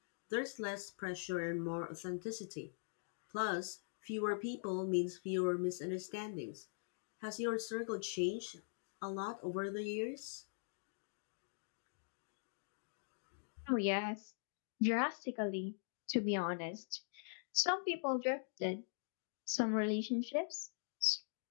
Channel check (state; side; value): silent; right; digital silence